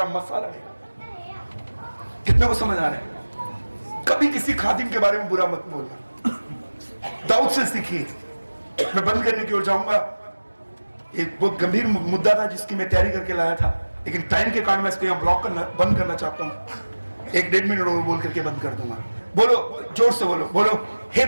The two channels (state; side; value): inverted; both; correlation -1.00